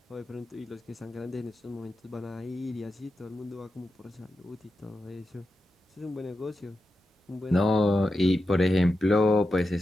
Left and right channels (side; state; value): both; normal; correlation 0.89